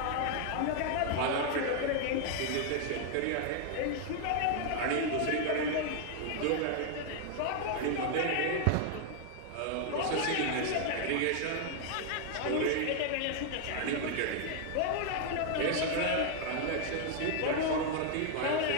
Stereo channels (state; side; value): different; both; correlation 0.00